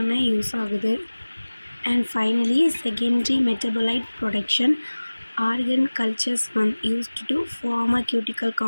யூஸ் ஆகுது. And finally secondary metabolite production, organ cultures used to pharmaceutical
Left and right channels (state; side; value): inverted; both; correlation -1.00